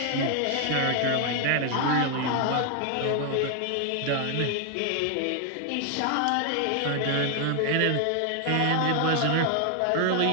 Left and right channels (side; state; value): both; different; correlation 0.00